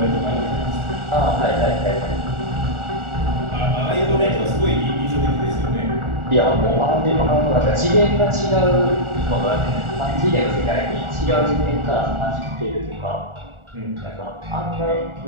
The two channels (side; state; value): left; late; 1.4 ms